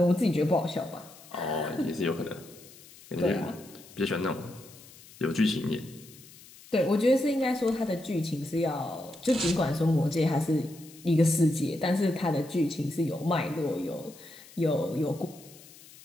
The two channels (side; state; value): left; noise; hiss, 21 dB below the sound